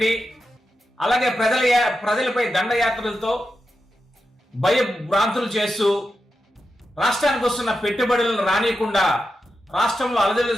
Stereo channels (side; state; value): both; normal; correlation 0.89